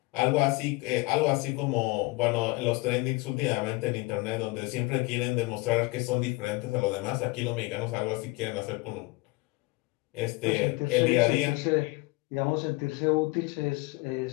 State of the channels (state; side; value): quieter; right; 24.0 dB